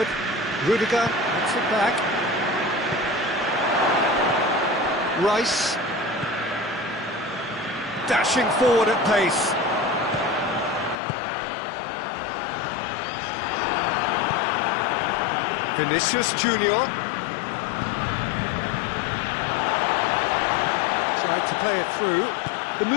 Rudiger gets it back. Rice dashing forward at pace. Vinicius Junior tried to play it through. The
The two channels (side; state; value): right; drops out; at 11.0 s